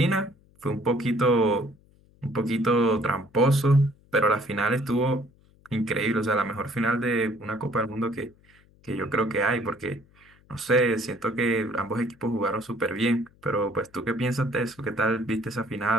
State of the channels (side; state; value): left; noise; hum, 30 dB below the sound